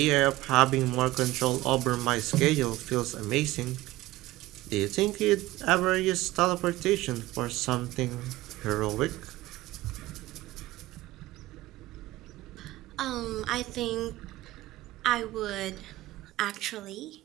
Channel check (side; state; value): left; quieter; 17.6 dB